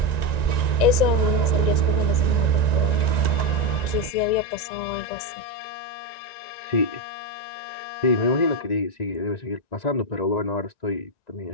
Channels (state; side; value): late; right; 1.9 ms